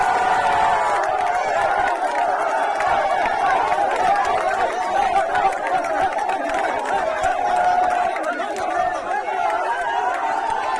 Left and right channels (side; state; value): both; identical; correlation 1.00